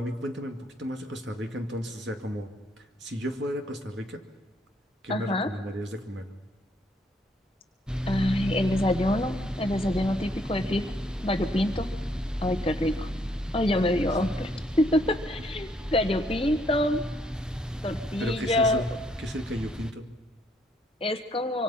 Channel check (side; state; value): both; normal; correlation 0.70